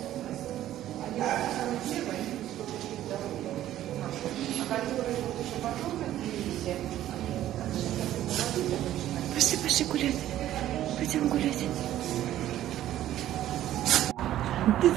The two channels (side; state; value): left; quieter; 12.9 dB